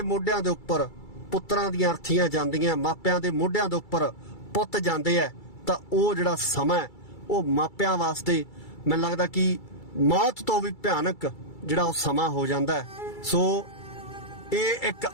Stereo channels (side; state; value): right; late; 2.3 ms